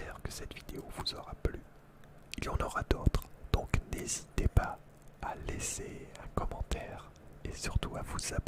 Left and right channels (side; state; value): both; identical; correlation 1.00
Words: que cette vidéo vous aura plu. Il y en aura d'autres, donc n'hésitez pas à laisser un commentaire et surtout à vous